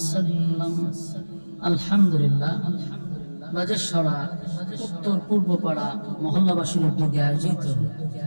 الحمد لله. বাজেশ্বরা উত্তর পূর্ব পাড়া মহল্লাবাসীর উদ্যোগে আয়োজিত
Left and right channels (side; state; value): both; inverted; correlation -1.00